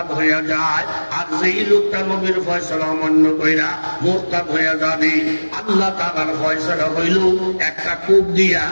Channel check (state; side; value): inverted; both; correlation -1.00